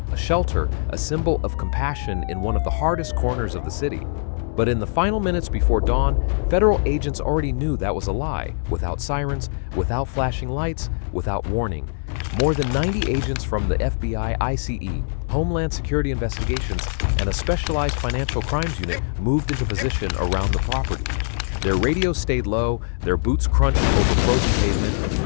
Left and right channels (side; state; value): right; silent; digital silence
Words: a shelter, a symbol of compassion in one of the hardest corners of the city. But in the final minutes before dawn, federal agents already knew that was a lie, without sirens, without flashing lights, without warning. More than 90 agents from the FBI, ICE, Homeland Security Investigations, and a specialized financial crimes unit moved into position around the property. Their radios stayed low, their boots crunched over frozen